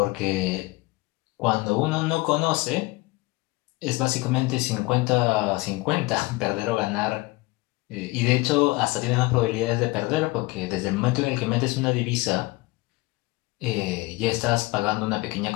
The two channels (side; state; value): right; quieter; 22.3 dB